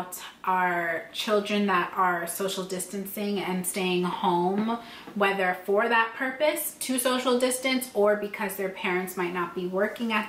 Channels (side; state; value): both; identical; correlation 1.00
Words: our children that are social distancing and staying home, whether for that purpose, to social distance, or because their parents might not be working